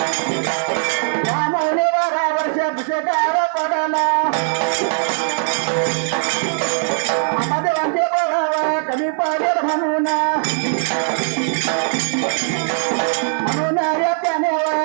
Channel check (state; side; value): silent; left; 66 dB below the other